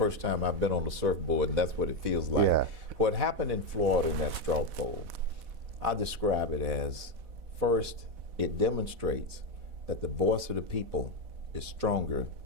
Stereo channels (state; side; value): late; left; 4.1 ms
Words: time I've been on the surfboard, and that's what it feels like. Yeah. What happened in Florida in that straw poll, I describe it as, first, it demonstrates that the voice of the people is stronger